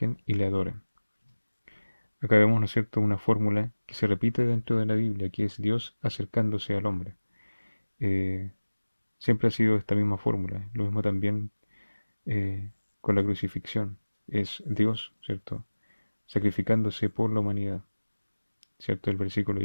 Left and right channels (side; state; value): both; inverted; correlation -1.00